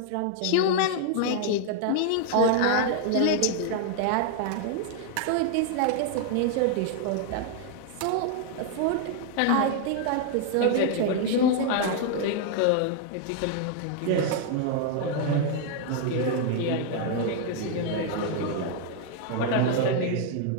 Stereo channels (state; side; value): different; both; correlation 0.00